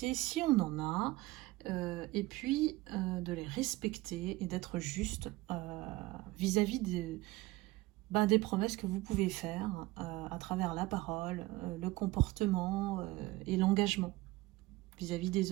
si on en a, et puis de les respecter et d'être juste vis-à-vis des promesses que vous pouvez faire à travers la parole, le comportement et l'engagement vis-à-vis des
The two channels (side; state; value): left; quieter; 19.7 dB